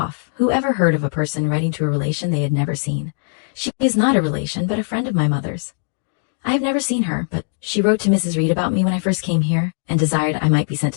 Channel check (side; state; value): right; silent; 65 dB below the other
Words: Who ever heard of a person writing to a relation they had never seen? She is not a relation, but a friend of my mother's. I have never seen her, but she wrote to Mrs. Reed about me when I first came here, and desired I might be sent